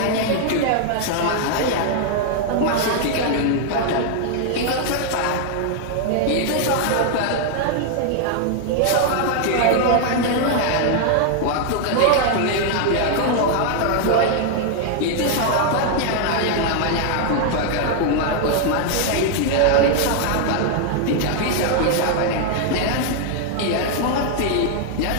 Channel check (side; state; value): both; different; correlation 0.00